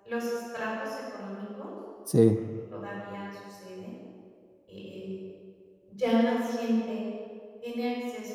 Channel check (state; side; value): identical; both; correlation 1.00